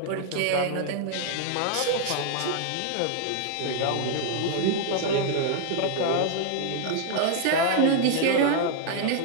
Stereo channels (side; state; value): both; different; correlation 0.00